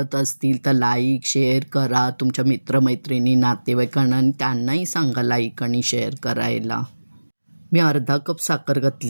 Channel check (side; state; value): both; inverted; correlation -1.00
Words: असतील तर लाईक शेअर करा तुमच्या मित्रमैत्रिणी नातेवाईकांना, आणि त्यांनाही सांगा लाईक आणि शेअर करायला. मी अर्धा कप साखर